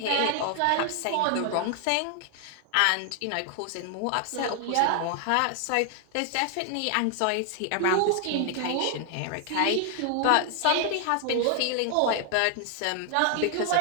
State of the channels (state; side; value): different; both; correlation 0.00